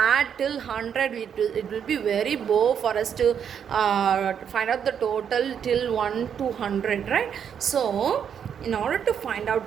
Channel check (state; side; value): quieter; left; 8.0 dB